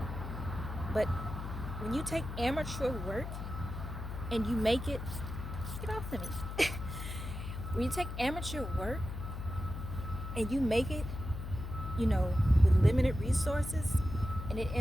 But when you take amateur work and you make it, get off to me. When you take amateur work and you make it, you know, with limited resources, and it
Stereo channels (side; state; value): left; noise; hum, 7 dB below the sound